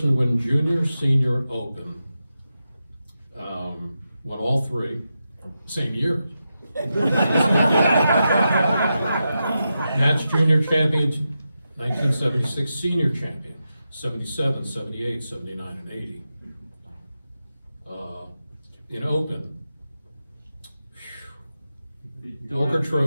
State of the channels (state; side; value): inverted; both; correlation -0.89